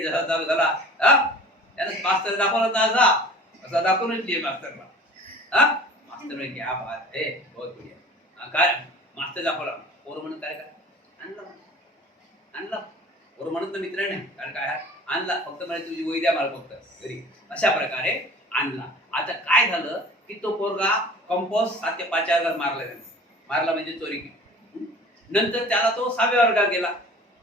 जसा चालू झाला. त्यानं मास्तर दाखवला ना, असा दाखवूनच दिले मास्तरला. मास्तर म्हणजे क्या बात है, बहुत बढ़िया. काय मास्तर दाखवला, पोरं म्हणून काय आणला पोरं म्हणत ना मित्र नाही, कारण काय आणला फक्त म्हणजे तुझी वही द्या मला फक्त घरी, अशा प्रकारे आणला. आता काय झालं की तो पोरगा कंपोस्ट 7 ते 5 वर्गात मारला म्हणजे चोरी केली. नंतर त्याला तो 6व्या वर्गात गेला.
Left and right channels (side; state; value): both; normal; correlation 0.44